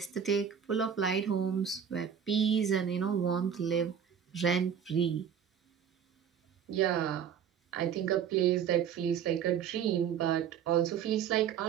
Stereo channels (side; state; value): left; quieter; 8.2 dB